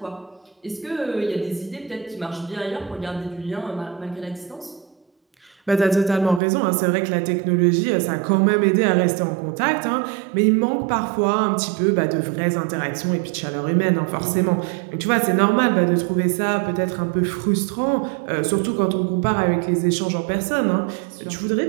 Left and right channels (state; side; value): drops out; left; at 6.4 s